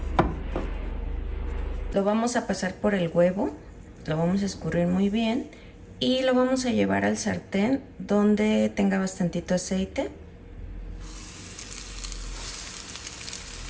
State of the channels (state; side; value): identical; both; correlation 1.00